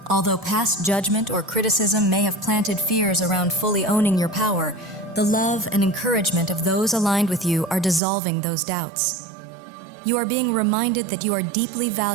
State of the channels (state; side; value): drops out; left; at 8.0 s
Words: Although past judgment or criticism may have planted fears around fully owning your power, the love and encouragement of those aligned with you are dissolving those doubts. You are being reminded that you are deeply